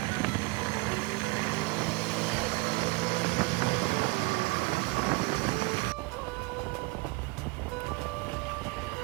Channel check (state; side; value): quieter; left; 26.3 dB